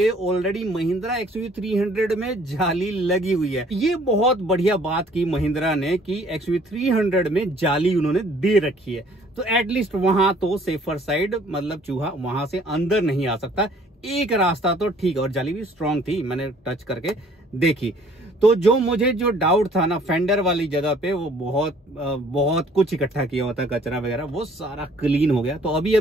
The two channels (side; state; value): both; normal; correlation 0.57